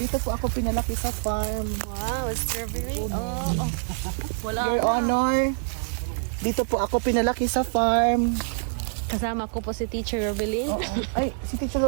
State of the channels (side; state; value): left; silent; digital silence